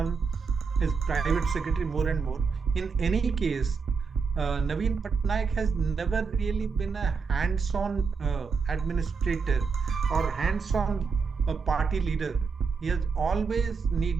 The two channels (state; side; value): quieter; left; 5.2 dB